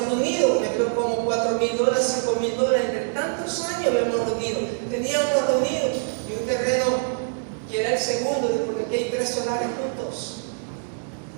reunido, me creo como $4,000, $5,000, entre tantos años habíamos reunido. Teníamos reunido y un terreno que era el segundo, porque aquí hay 3 solares juntos.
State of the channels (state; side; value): silent; left; digital silence